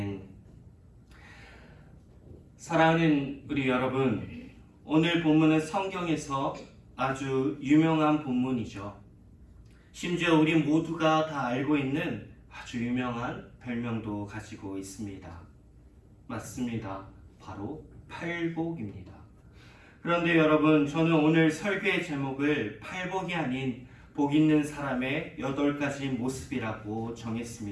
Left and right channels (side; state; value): both; identical; correlation 1.00